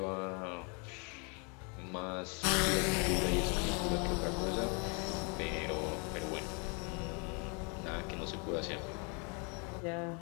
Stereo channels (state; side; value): quieter; right; 34.4 dB